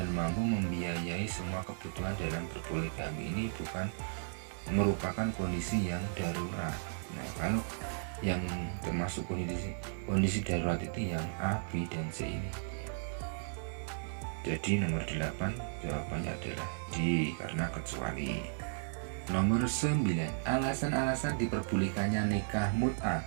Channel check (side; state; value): left; silent; digital silence